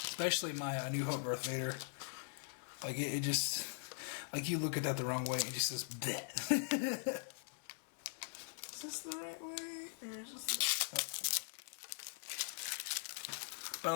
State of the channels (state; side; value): silent; right; digital silence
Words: Especially my A New Hope Darth Vader. Like, it just... Like, you look at that the wrong way, and it just says, bleh. Is this the right way? Or is this the... But I